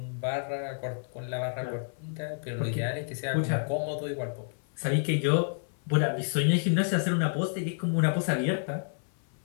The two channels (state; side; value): silent; right; 56 dB below the other